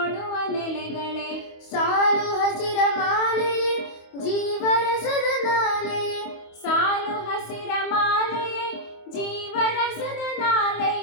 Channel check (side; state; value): right; late; 25 ms